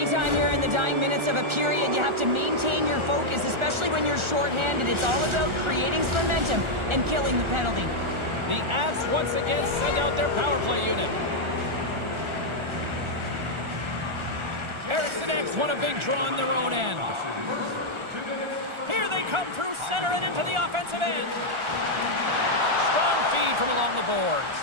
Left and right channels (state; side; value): late; left; 1.4 ms